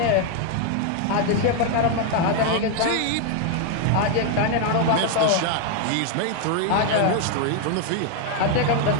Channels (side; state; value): both; different; correlation 0.00